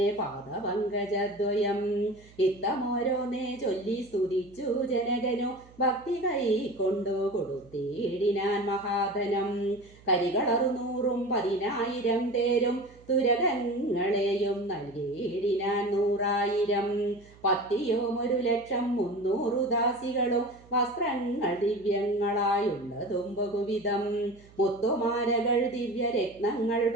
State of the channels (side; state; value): right; noise; hum, 25 dB below the sound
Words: പാദപങ്കജദ്വയം ഇത്തമോരോന്നേ ചൊല്ലി സ്തുതിച്ചു ജനകനു ഭക്തി കൈക്കൊണ്ടു കൊടുത്തിടിനാൻ മഹാധനം കരികളറുനൂറും 10,000 തേരും തുരകങ്ങളെയും നൽകിയിടിനാൻ 100,000 പത്തിയും 1,00,300 ദാസികളും വസ്ത്രങ്ങൾ ദിവ്യങ്ങളായുള്ളതും ബഹുവിധം മുത്തുമാലകൾ ദിവ്യരത്നങ്ങൾ